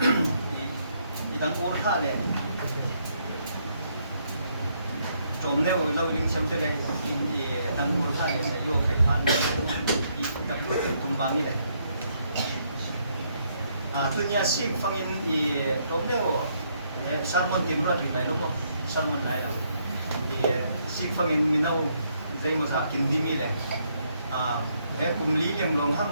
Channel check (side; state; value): both; inverted; correlation -0.73